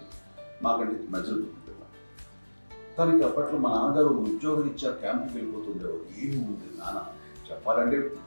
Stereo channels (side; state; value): both; inverted; correlation -1.00